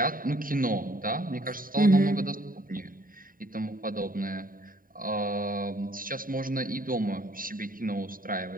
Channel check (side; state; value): left; late; 0.41 ms